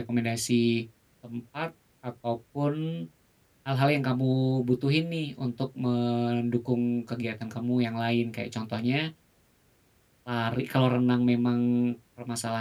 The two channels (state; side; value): identical; both; correlation 1.00